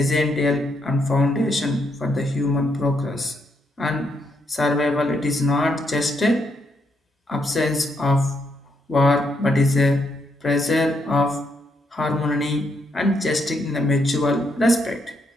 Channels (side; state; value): both; normal; correlation 0.77